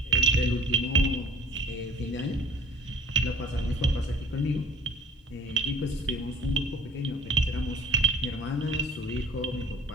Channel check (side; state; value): both; normal; correlation 0.47